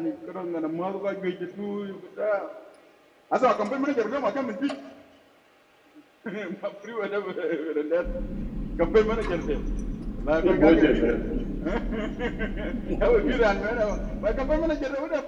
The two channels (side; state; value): both; identical; correlation 1.00